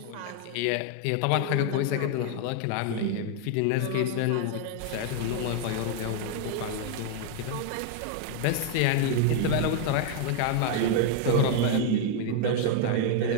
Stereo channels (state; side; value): different; both; correlation 0.00